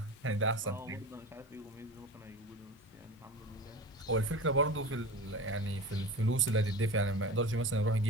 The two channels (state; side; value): normal; both; correlation 0.31